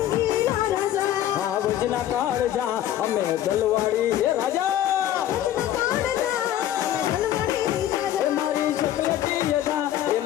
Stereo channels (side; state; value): right; quieter; 12.1 dB